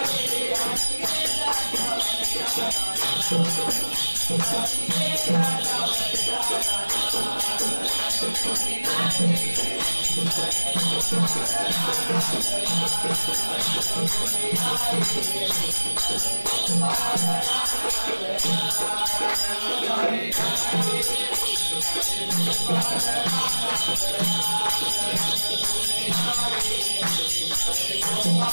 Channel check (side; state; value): both; inverted; correlation -1.00